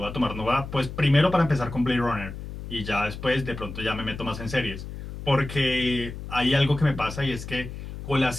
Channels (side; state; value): left; noise; hum, 10 dB below the sound